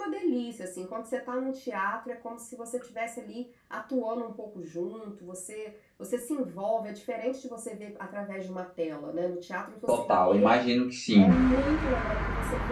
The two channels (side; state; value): both; identical; correlation 1.00